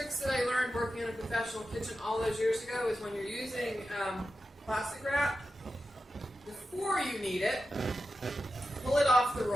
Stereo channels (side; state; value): both; normal; correlation 0.91